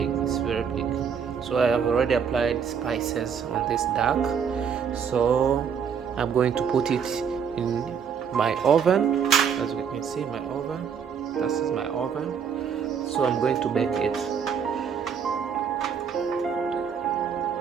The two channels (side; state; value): left; quieter; 7.1 dB